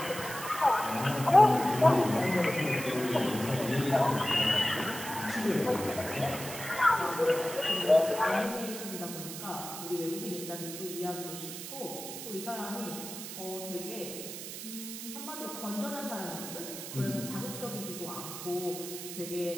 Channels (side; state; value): right; noise; hiss, 9 dB below the sound